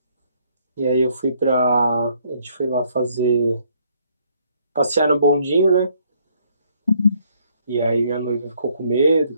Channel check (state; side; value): inverted; both; correlation -0.68